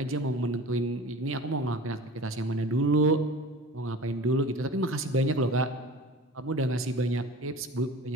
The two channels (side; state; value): both; normal; correlation 0.38